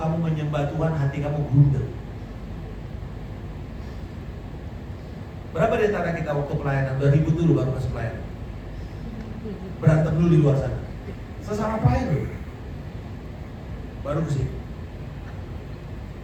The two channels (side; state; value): both; identical; correlation 1.00